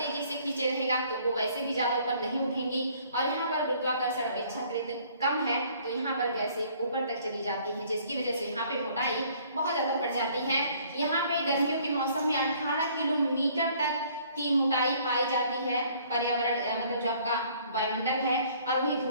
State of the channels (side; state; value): both; inverted; correlation -0.59